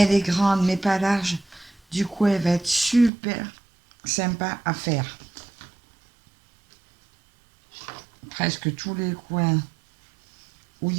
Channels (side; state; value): left; drops out; at 3.1 s